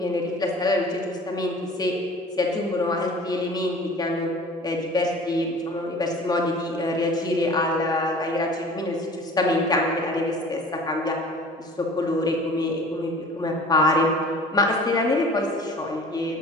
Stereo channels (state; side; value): normal; both; correlation 0.45